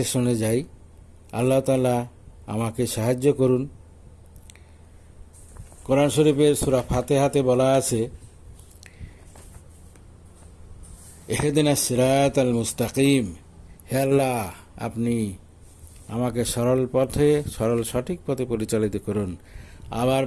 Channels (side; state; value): both; identical; correlation 1.00